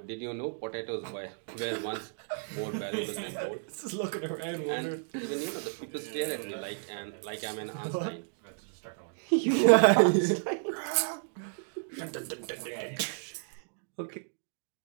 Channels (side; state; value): left; silent; digital silence